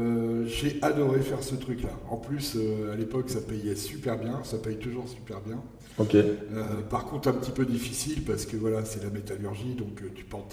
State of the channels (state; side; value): identical; both; correlation 1.00